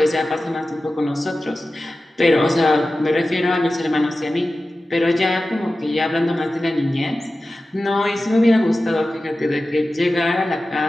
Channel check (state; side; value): normal; both; correlation 0.95